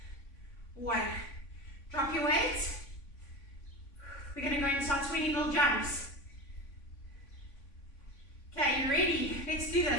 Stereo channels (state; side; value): late; right; 3.5 ms